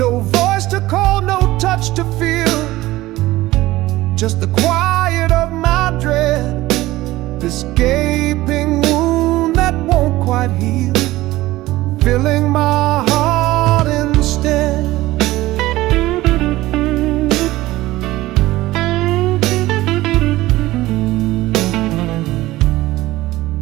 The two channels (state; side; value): quieter; left; 17.5 dB